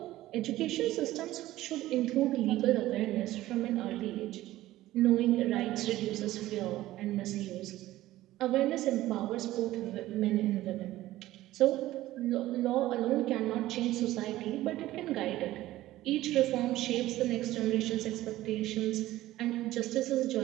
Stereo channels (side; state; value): left; quieter; 15.7 dB